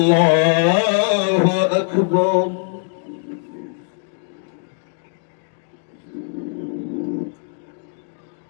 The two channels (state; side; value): silent; right; 65 dB below the other